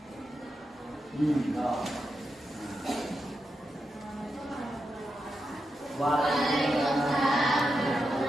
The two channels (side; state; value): both; normal; correlation 0.87